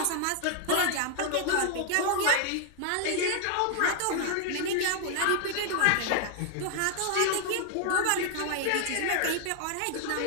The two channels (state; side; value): different; both; correlation 0.00